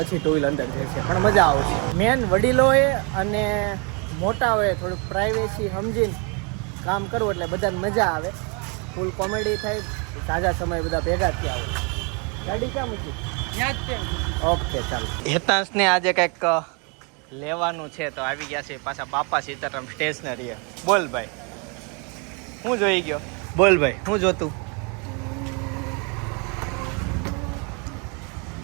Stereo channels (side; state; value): left; quieter; 34.0 dB